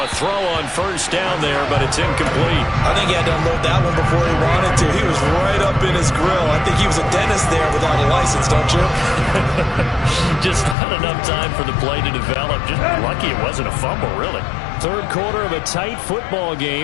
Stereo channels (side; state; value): right; drops out; at 10.8 s